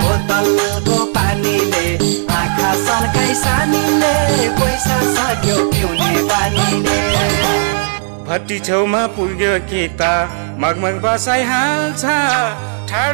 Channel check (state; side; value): silent; left; digital silence